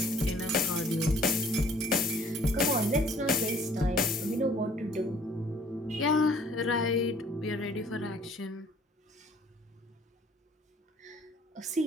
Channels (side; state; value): both; normal; correlation 0.56